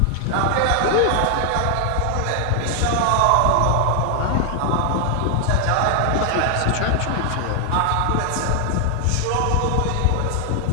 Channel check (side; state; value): both; different; correlation 0.00